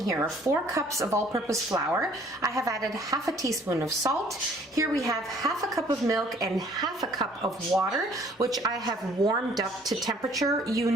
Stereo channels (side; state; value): both; normal; correlation 0.58